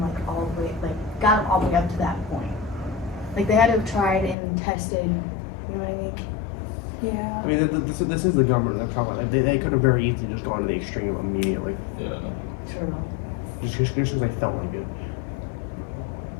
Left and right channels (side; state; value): right; drops out; at 4.4 s